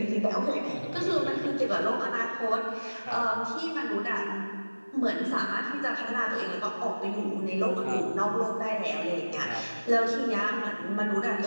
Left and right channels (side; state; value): both; inverted; correlation -1.00